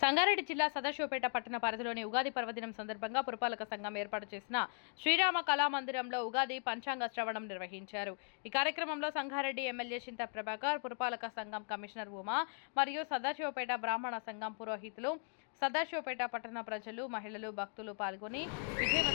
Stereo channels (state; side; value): silent; right; 52 dB below the other